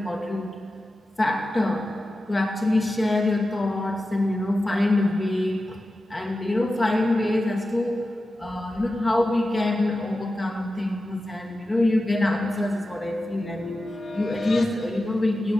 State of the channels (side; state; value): both; normal; correlation 0.93